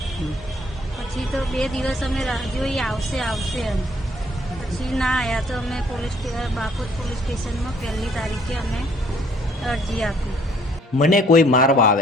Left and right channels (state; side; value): normal; both; correlation 0.63